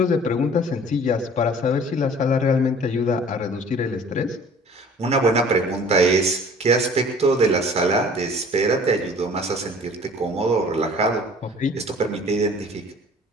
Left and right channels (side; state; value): both; normal; correlation 0.49